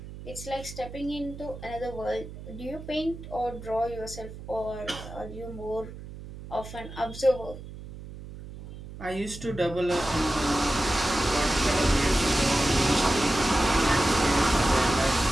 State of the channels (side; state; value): right; noise; hum, 13 dB below the sound